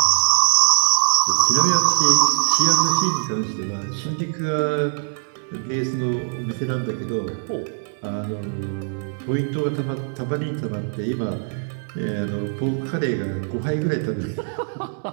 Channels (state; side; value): silent; left; 64 dB below the other